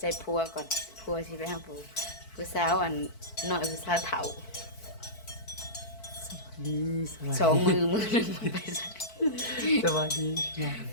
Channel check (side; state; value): right; late; 4.5 ms